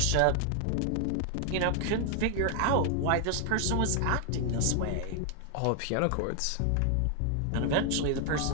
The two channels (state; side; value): different; both; correlation 0.00